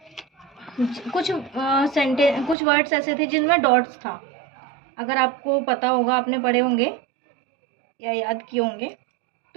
कुछ वर्ड्स ऐसे थे जिनमें डॉट्स था। अगर आपको पता होगा, आपने पढ़े होंगे या याद किए होंगे,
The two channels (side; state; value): left; drops out; at 2.6 s